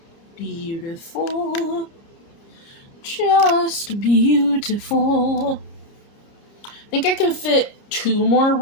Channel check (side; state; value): right; late; 30 ms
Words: Beautiful. Just beautiful. I think I can fit 2 more